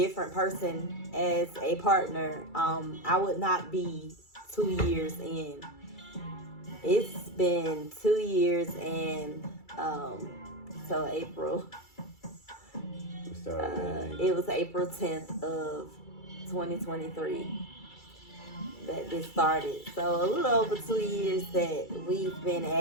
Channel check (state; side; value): late; right; 2.3 ms